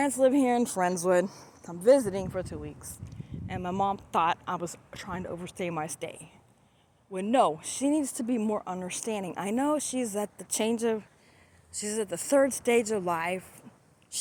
live here in Friendswood. I'm visiting for 2 weeks, and my mom thought I was trying to overstay my stay. Well, no, she needs to be more understanding. I know she's at the third stage of life.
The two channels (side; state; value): both; identical; correlation 1.00